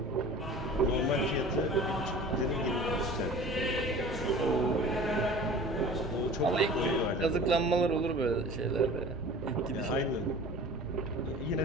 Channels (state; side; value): normal; both; correlation 0.41